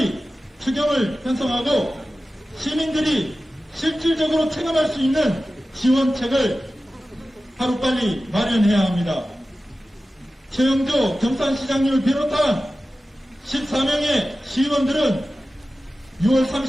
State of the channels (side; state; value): both; normal; correlation 0.95